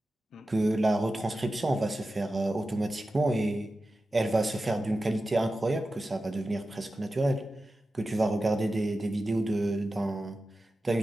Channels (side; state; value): both; normal; correlation 0.93